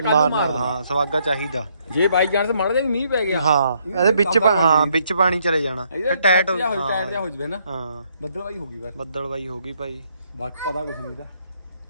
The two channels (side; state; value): both; inverted; correlation -0.71